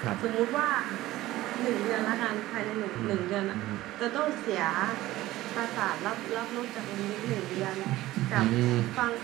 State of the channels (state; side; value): quieter; left; 16.5 dB